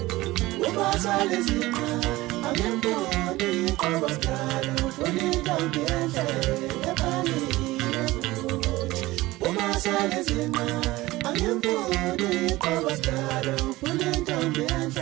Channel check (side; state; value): left; quieter; 18.9 dB